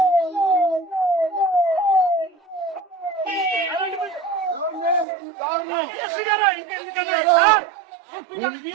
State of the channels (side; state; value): left; drops out; at 5.1 s